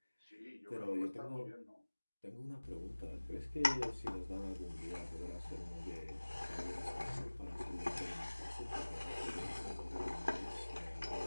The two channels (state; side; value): inverted; both; correlation -1.00